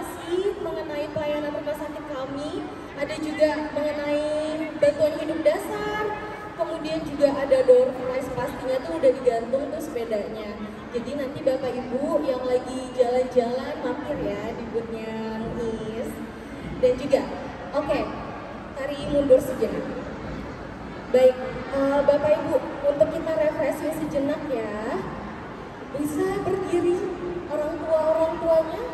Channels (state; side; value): identical; both; correlation 1.00